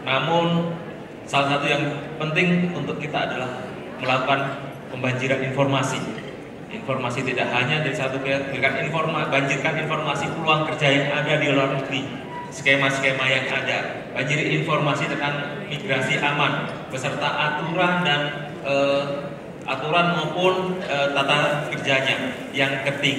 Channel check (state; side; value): identical; both; correlation 1.00